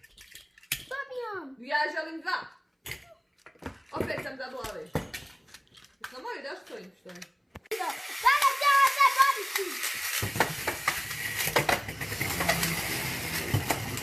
Ja želim dva! Opet sam zabila ove. Jesmo moji da stojim što je? Sada ćemo se boriti.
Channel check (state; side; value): identical; both; correlation 1.00